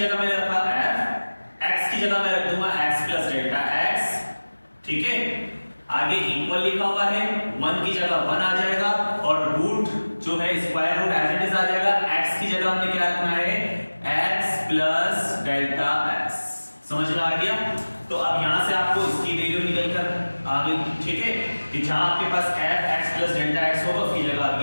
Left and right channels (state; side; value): inverted; both; correlation -1.00